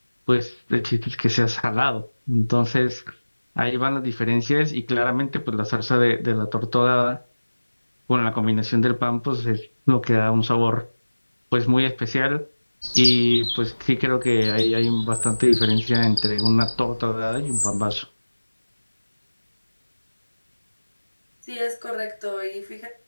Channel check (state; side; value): inverted; both; correlation -1.00